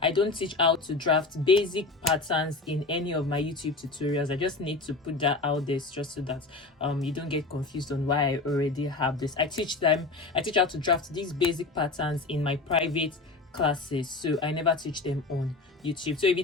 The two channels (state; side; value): quieter; right; 3.6 dB